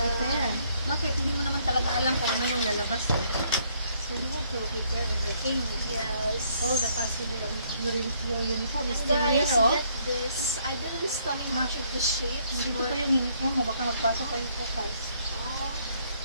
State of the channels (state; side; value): inverted; both; correlation -0.68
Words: Bakit? Hindi mo naman talaga alam kung ano yung lalabas. So you have to prepare everything. yes. All the possible, your uniform is And still guys, here, oh. get this. I didn't study much of the shapes, Dito but pa yung uniform mo, baka magpasok pa yung focus.